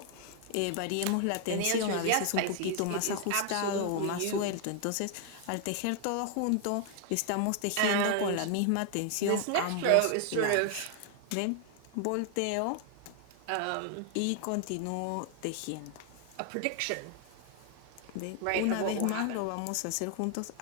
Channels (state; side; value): different; both; correlation 0.00